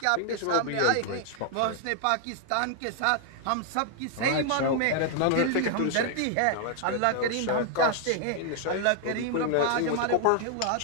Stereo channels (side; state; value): both; different; correlation 0.00